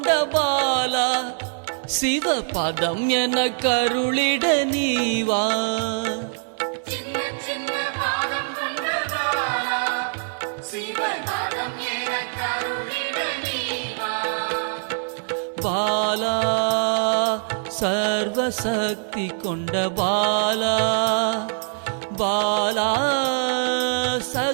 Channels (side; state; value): left; silent; 59 dB below the other